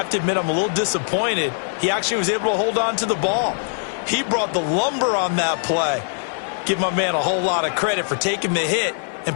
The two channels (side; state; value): right; silent; digital silence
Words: to admit I'm a little disappointed. He actually was able to hold on to the ball. He brought the lumber on that play. Give my man a whole lot of credit for taking the hit